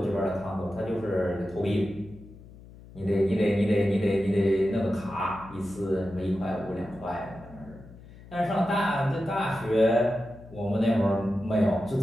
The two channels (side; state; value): left; noise; hum, 19 dB below the sound